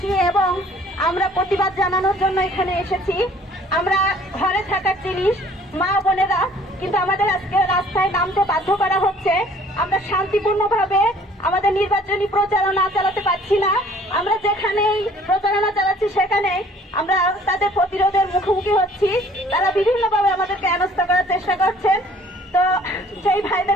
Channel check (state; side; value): normal; both; correlation 0.55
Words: এবং আমরা প্রতিবাদ জানানোর জন্য এখানে এসেছি। আমরা ঘরে থাকার জিনিস মা বোনেরা, কিন্তু আমাদের আজকে রাস্তায় নামতে বাধ্য করা হচ্ছে। আমরা শান্তিপূর্ণভাবে আমাদের নির্বাচনী প্রচারণা চালাতে পারছি না। আমরা যেখানেই প্রচারণা চালাচ্ছি সেখানে আমরা তাদের প্রতিরোধের মুখোমুখি হচ্ছি। তারা বিভিন্নভাবে আমাদেরকে হেনস্থা করার চেষ্টা করছেন। তো সেই